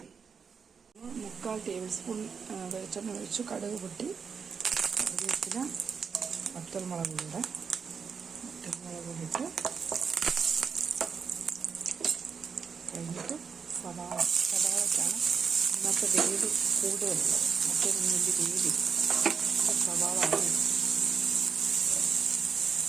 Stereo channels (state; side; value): quieter; left; 6.1 dB